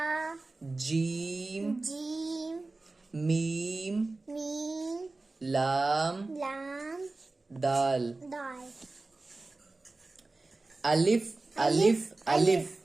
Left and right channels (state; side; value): quieter; left; 3.3 dB